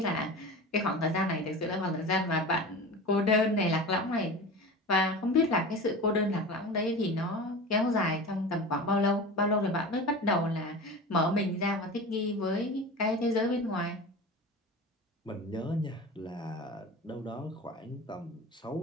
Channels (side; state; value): both; normal; correlation 0.32